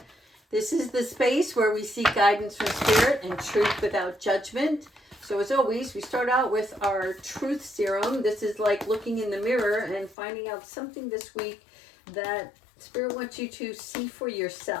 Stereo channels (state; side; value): drops out; right; at 10.2 s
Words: This is the space where we seek guidance from spirit and truth without judgment. So as always, we start out with our truth serum. This is like looking in the mirror and finding out something this week that spirit wants you to see for